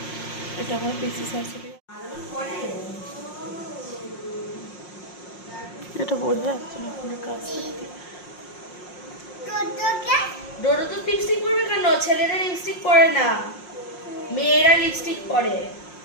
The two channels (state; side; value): late; right; 5.6 ms